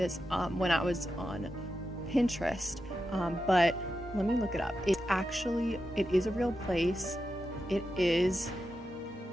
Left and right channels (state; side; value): normal; both; correlation 0.89